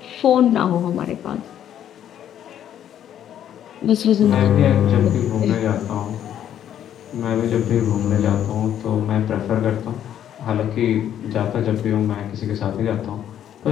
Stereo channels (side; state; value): right; quieter; 10.4 dB